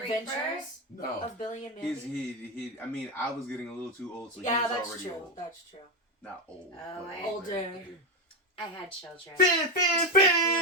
No. of Billy and Mandy. He, I mean, I was getting a little too old, so yeah, he was that's already true. old. That's true. Not old. Oh, but Older. I had children. Fin.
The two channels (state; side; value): normal; both; correlation 0.11